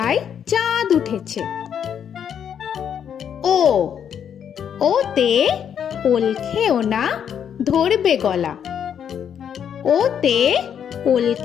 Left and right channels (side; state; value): right; quieter; 8.5 dB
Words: চাঁদ উঠেছে। ও ওতে ওল খেও না ধরবে গলা। ওতে ওল